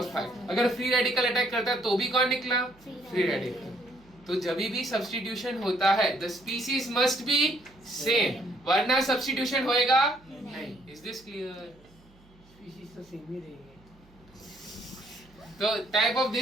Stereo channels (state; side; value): noise; right; hum, 28 dB below the sound